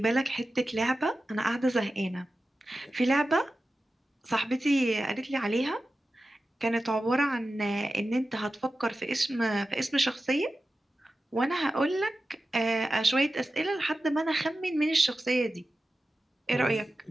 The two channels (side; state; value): both; normal; correlation 0.93